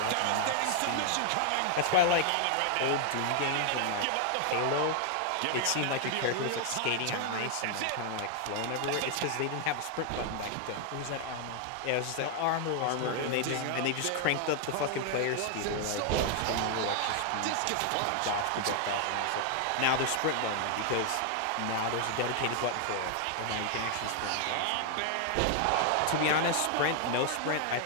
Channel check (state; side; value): different; both; correlation 0.00